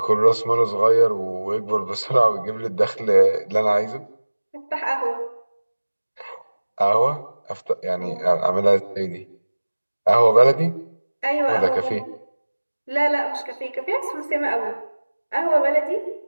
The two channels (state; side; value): inverted; both; correlation -1.00